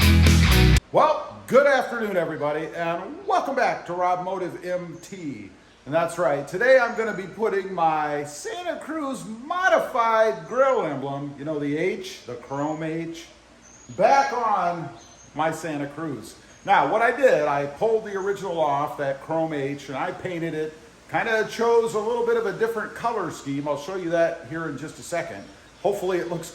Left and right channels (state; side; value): identical; both; correlation 1.00